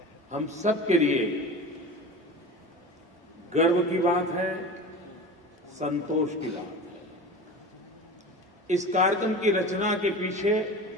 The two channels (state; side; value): normal; both; correlation 0.33